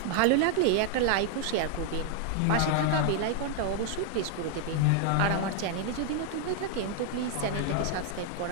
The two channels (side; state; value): both; different; correlation 0.00